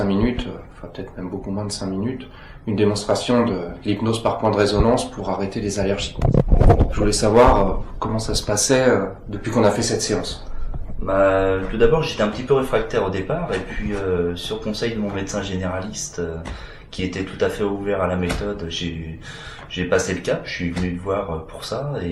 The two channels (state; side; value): identical; both; correlation 1.00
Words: minutes, enfin peut-être même beaucoup moins de 5 minutes, une démonstration de l'hypnose par point de résonance pour arrêter les allergies. Je voulais savoir comment ça se passait depuis qu'on a fait cette séance. Tout d'abord, j'étais un petit peu réfractaire au départ, et puis sur conseil de mon médecin généraliste, qui était tout à fait ouvert à la méthode, j'ai passé le cap, je suis venu te voir pour ça,